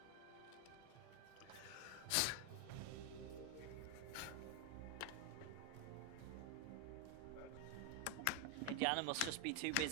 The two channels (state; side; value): different; both; correlation 0.01